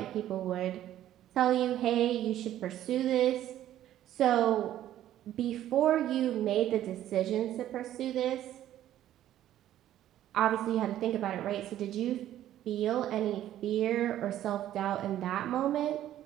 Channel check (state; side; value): quieter; left; 12.4 dB